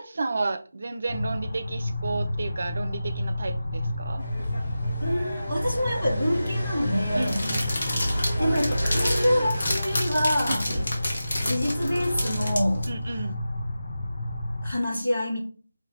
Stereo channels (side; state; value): both; inverted; correlation -0.93